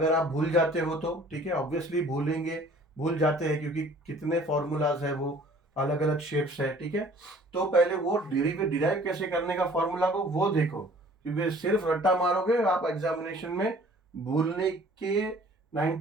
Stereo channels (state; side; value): normal; both; correlation 0.52